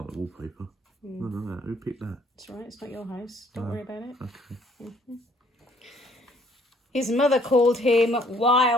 the wallpaper. Look at that. Who picked that? It's all right. It's not your house. Don't worry about it. Okay. His mother called him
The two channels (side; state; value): both; normal; correlation 0.62